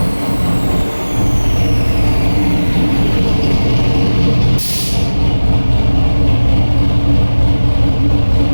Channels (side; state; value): both; inverted; correlation -1.00